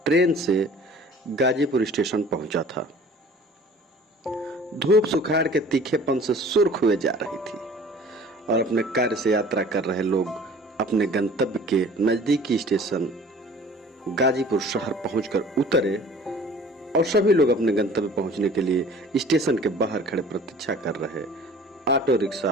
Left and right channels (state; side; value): normal; both; correlation 0.48